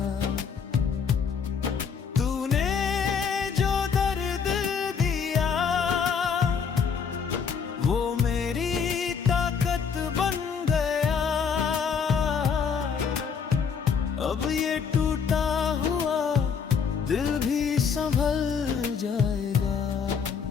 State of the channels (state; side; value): quieter; right; 6.4 dB